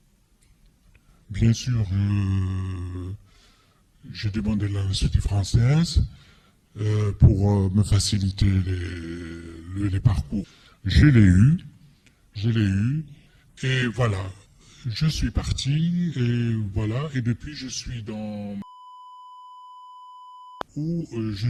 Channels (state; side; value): identical; both; correlation 1.00